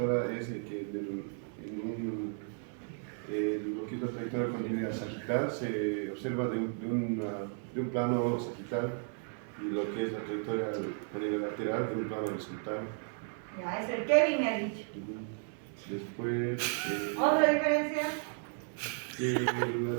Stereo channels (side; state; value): left; silent; 55 dB below the other